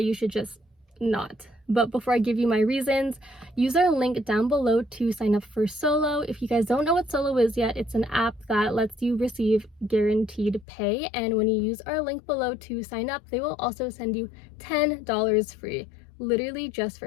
should just not. But before I give you my reasons, use our link down below to sign up for Solo. If you guys don't know what Solo is yet, it's an app that lets you receive guaranteed pay, and when you use our link below to sign up, they will also send you $10 free. Literally just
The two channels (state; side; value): drops out; right; at 10.7 s